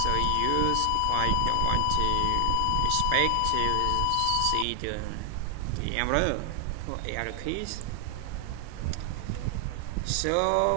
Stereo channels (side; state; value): both; different; correlation 0.00